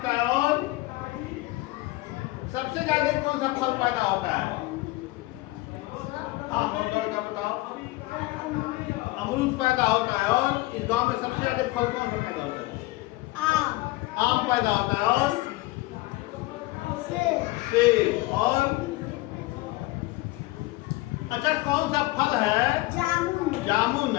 है। और सबसे ज्यादा कौन सा फल पैदा होता है? हाँ, दौड़ कर बताओ। अमरूद पैदा होता है। और इस गांव में सबसे ज्यादा फल कौन सा पैदा होता है? आम पैदा होता है। और सेब। और अच्छा, कौन सा फल है? जामुन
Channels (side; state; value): right; quieter; 20.4 dB